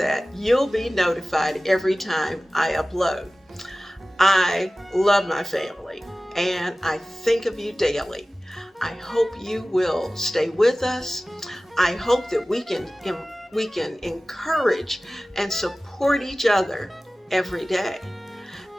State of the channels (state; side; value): normal; both; correlation 0.97